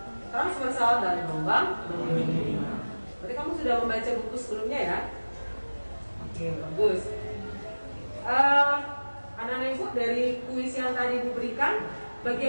transversal dan gelombang longitudinal. Berarti kamu sudah membaca buku sebelumnya ya? Oke, bagus. Anak-anak ibu, dari kuis yang tadi ibu berikan,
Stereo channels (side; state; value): both; inverted; correlation -1.00